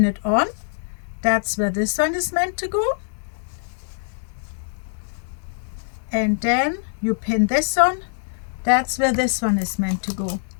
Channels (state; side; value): silent; right; digital silence